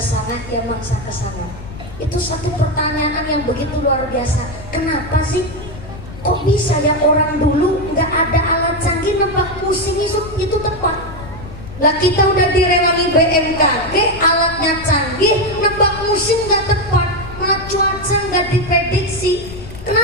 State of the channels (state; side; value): noise; left; rumble, 14 dB below the sound